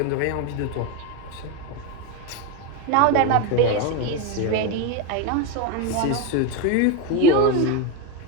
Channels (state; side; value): different; both; correlation 0.03